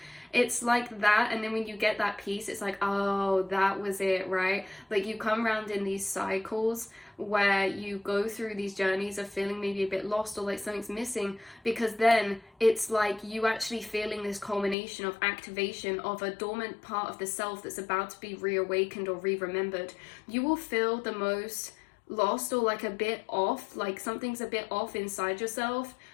It's like that. And then when you get that peace, it's like, oh, that was it, right? Like you come around in these cycles where you go through these journeys of feeling maybe a bit lost or like something's missing, because then it's like you actually feeling this culmination of activation of a dormant part of the self that's about to be reawakened or re-remembered. You will feel the most lost or like a bit off, like something's a bit off inside yourself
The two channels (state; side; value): drops out; right; at 14.8 s